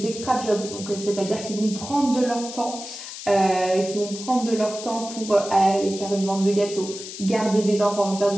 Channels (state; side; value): noise; left; hiss, 11 dB below the sound